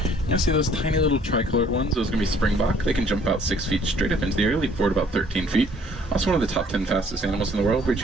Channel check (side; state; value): both; normal; correlation 0.59